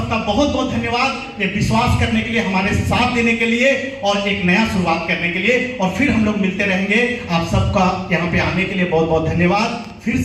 बहुत बहुत धन्यवाद ये विश्वास करने के लिए, हमारे साथ देने के लिए और एक नया शुरुआत करने के लिए। और फिर हम लोग मिलते रहेंगे। आप सबका यहाँ पे आने के लिए बहुत बहुत धन्यवाद। फिर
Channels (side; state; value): both; identical; correlation 1.00